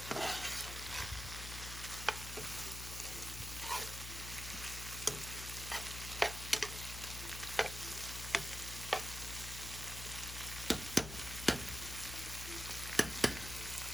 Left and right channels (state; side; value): noise; left; hum, 8 dB below the sound